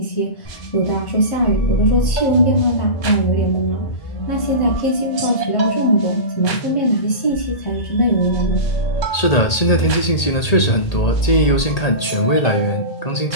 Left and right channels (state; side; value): late; right; 1.8 ms